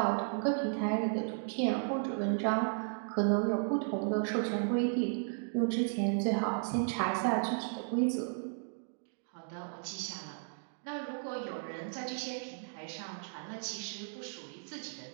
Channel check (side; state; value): left; silent; digital silence